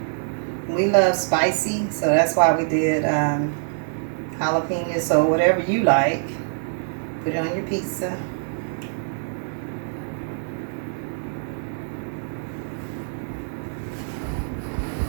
We love spicy, so that's why we did jalapenos. So whatever you like, put it on your pizza.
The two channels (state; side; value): silent; left; 62 dB below the other